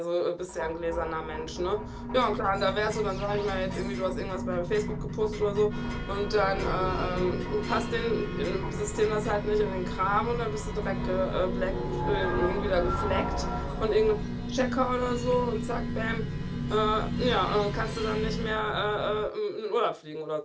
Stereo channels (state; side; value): identical; both; correlation 1.00